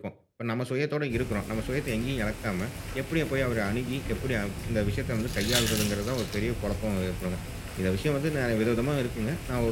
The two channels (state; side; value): identical; both; correlation 1.00